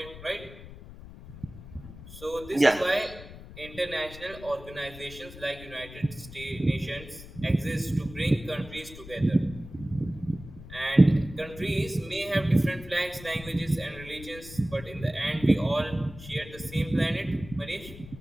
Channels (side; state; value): left; noise; rumble, 15 dB below the sound